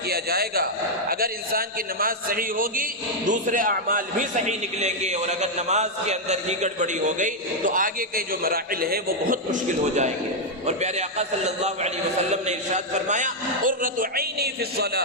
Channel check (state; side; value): normal; both; correlation -0.01